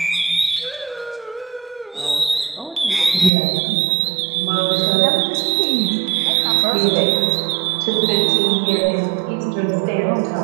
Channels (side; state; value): left; drops out; at 3.3 s